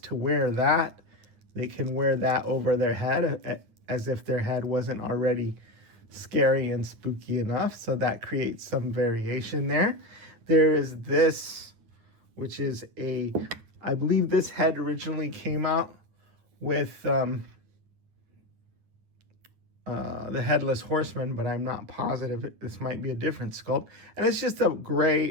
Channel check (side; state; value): left; late; 9.4 ms